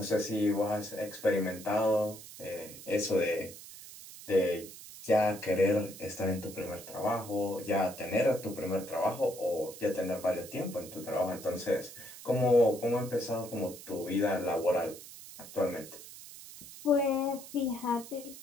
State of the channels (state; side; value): noise; right; hiss, 15 dB below the sound